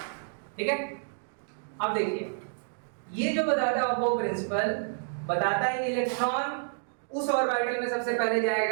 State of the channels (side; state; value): left; silent; digital silence